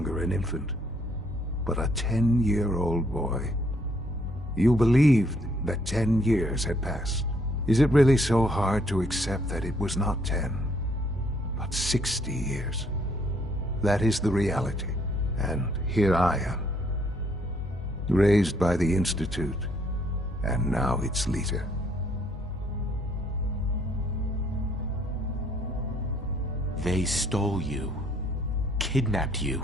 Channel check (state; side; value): normal; both; correlation 0.67